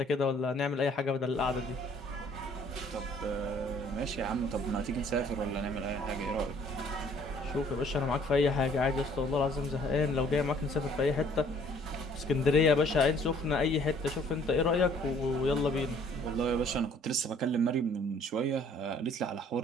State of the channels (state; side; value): normal; both; correlation 0.58